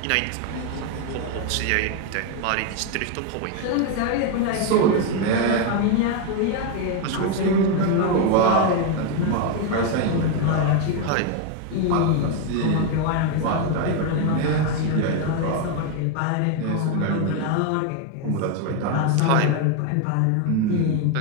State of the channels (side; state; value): both; different; correlation 0.01